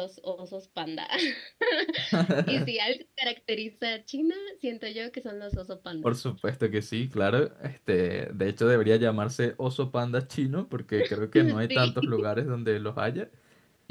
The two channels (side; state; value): both; identical; correlation 1.00